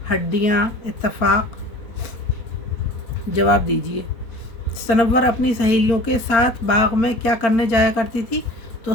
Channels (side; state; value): right; late; 4.0 ms